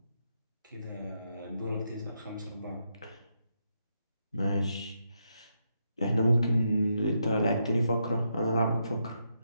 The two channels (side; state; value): both; inverted; correlation -0.81